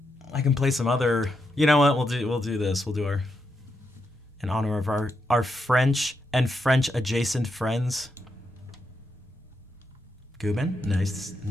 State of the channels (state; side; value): normal; both; correlation 0.83